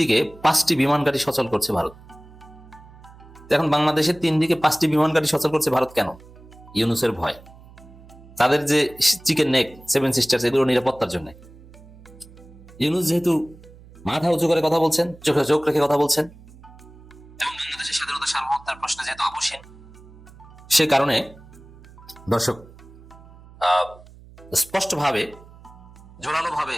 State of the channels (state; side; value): noise; right; hum, 21 dB below the sound